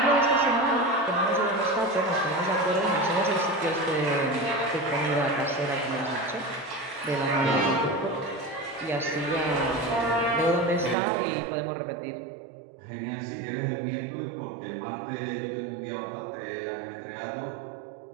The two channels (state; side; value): drops out; left; at 11.0 s